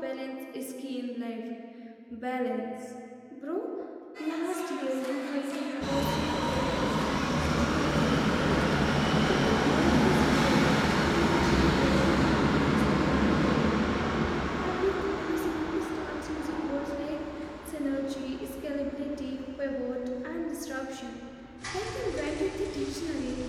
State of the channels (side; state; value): both; identical; correlation 1.00